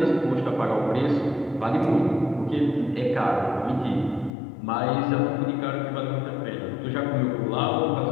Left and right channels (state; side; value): drops out; right; at 4.3 s